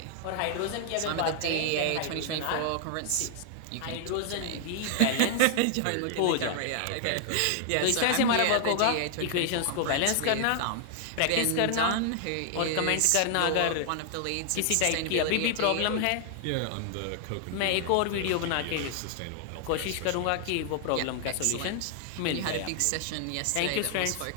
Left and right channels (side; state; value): both; different; correlation 0.00